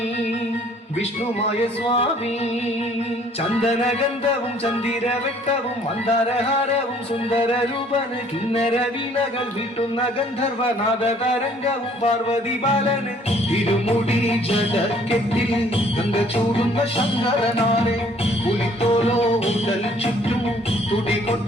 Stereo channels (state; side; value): normal; both; correlation 0.59